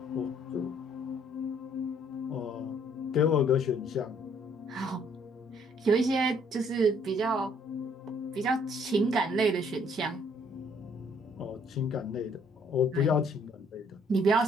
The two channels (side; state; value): both; normal; correlation 0.63